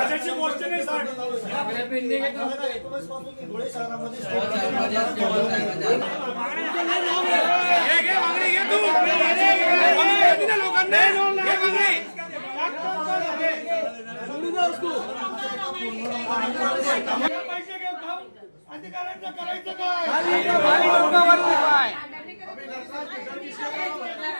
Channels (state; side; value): inverted; both; correlation -1.00